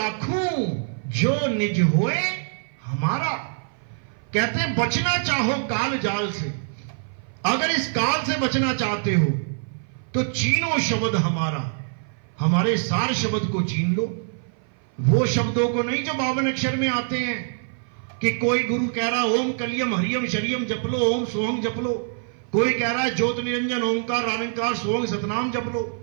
जो निज होए हमारा। कहते हैं बचना चाहो काल जाल से, अगर इस काल से बचना चाहते हो तो चीनो शब्द हमारा, हमारे सार शब्द को चीन लो। वो शब्दों को नहीं जो 52 अक्षर में आते हैं कि कोई गुरु कह रहा ओम कलियम हरियम शरियम जप लो, ओम सोहम जप लो। कोई कह रहा है ज्योत निरंजन ओंकार रानिकार सोहंग सतनाम जप लो।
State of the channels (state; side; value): silent; left; 56 dB below the other